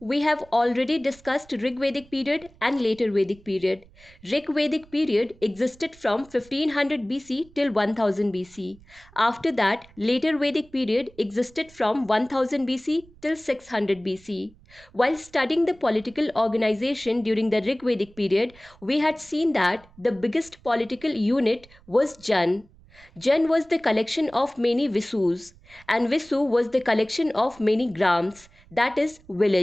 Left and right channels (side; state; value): right; noise; rumble, 26 dB below the sound